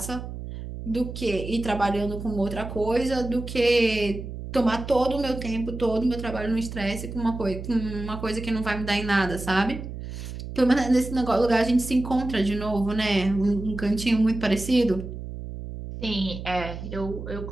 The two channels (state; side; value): noise; right; hum, 9 dB below the sound